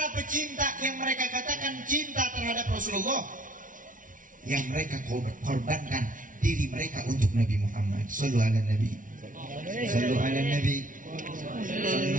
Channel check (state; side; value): late; left; 0.38 ms